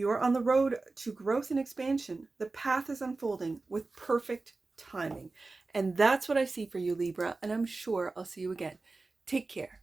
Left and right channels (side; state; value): left; quieter; 3.6 dB